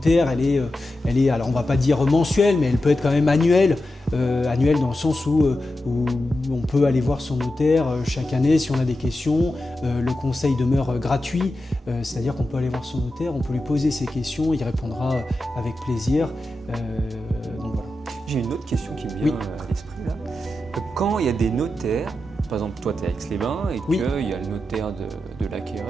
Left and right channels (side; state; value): both; normal; correlation 0.90